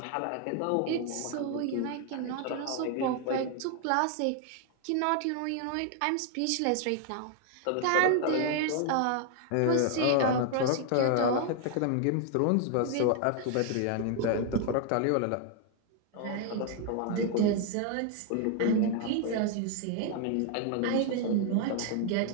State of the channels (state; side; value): different; both; correlation 0.00